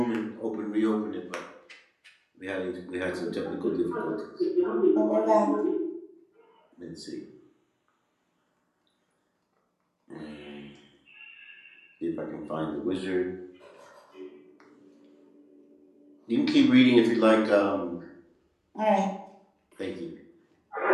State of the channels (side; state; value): both; identical; correlation 1.00